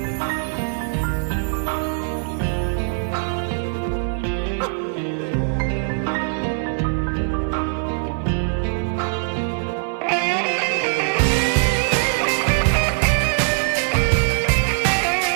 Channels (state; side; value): silent; left; digital silence